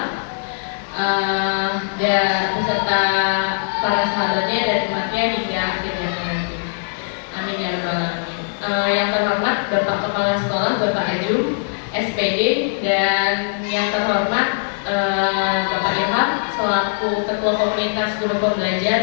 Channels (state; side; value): silent; right; digital silence